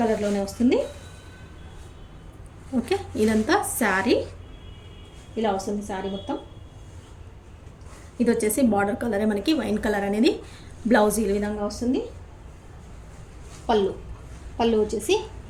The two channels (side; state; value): both; identical; correlation 1.00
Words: కలర్లోనే వస్తుంది. ఓకే, ఇదంతా శారీ ఇలా వస్తుంది, శారీ మొత్తం. ఇది వచ్చేసి బార్డర్ కలరే మనకి వైన్ కలర్ అనేది. బ్లౌజ్ ఈ విధంగా వస్తుంది. పళ్ళు వచ్చేసి